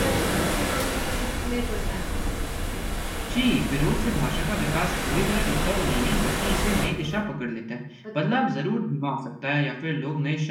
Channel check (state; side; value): identical; both; correlation 1.00